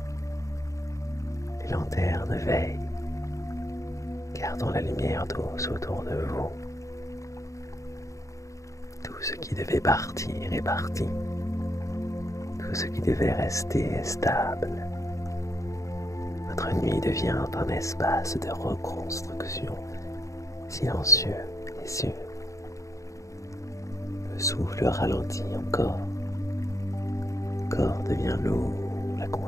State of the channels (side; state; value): right; late; 0.15 ms